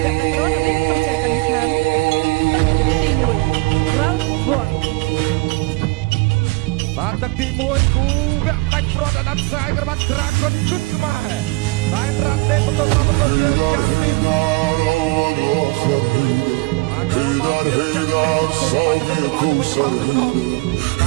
អ្នកដឹកនាំនៅក្នុងកម្ពុជាកានីស្ថានទី1 Round 1 បាទទឹកទី1គូវគ្គដាច់ប្រត់អាដាមខ្សែក្បាត់ Dragon គុណខ្មែរតែរ៉ាត់ទេបន្តមកបន្តយើងយ៉ាងទី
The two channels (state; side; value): quieter; left; 24.9 dB